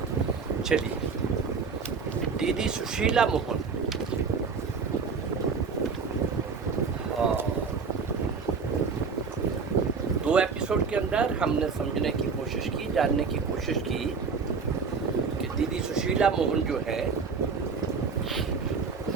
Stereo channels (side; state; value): left; quieter; 5.3 dB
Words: चलिए, दीदी सुशीला मोहन दो एपिसोड के अंदर हमने समझने की कोशिश की, जानने की कोशिश की कि दीदी सुशीला मोहन जो है